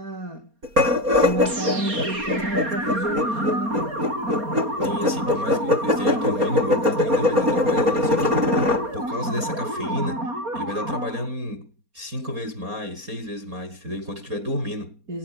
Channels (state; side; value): late; left; 4.3 ms